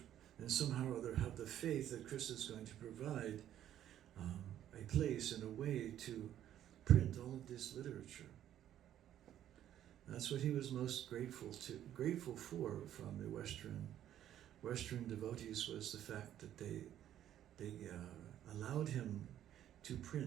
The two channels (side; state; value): left; quieter; 11.4 dB